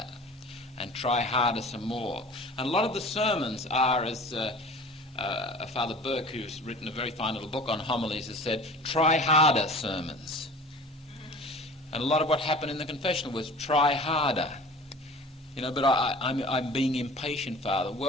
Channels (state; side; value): normal; both; correlation 0.42